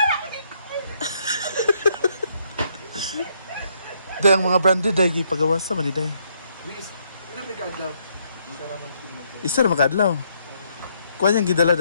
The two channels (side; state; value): both; inverted; correlation -0.72